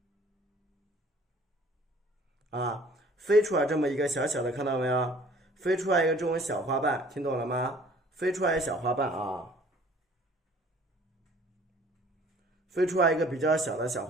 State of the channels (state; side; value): normal; both; correlation 0.53